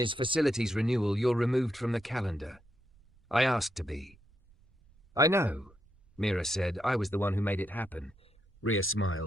facilities renewal. You're removed from the calendar." "I asked to be." "I know," Mira said. "I was the one who made it happen." Rhea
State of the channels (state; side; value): noise; right; rumble, 30 dB below the sound